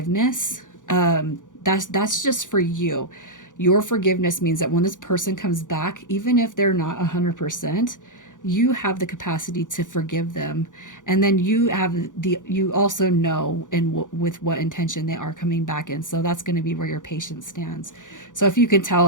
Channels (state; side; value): late; right; 0.87 ms